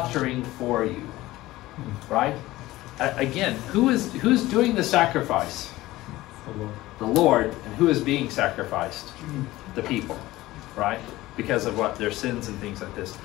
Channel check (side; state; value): right; quieter; 17.5 dB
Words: for you. Right? Again, who's doing the sacrifice? The Lord. And who is being sacrificed? The people. Right? Because of what? Their sins and things like this.